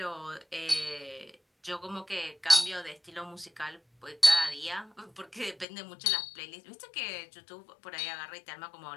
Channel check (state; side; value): drops out; right; at 5.7 s